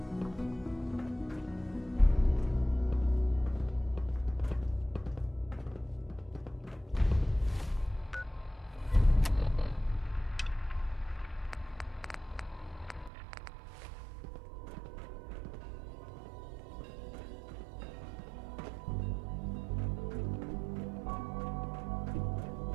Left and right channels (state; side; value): drops out; left; at 13.1 s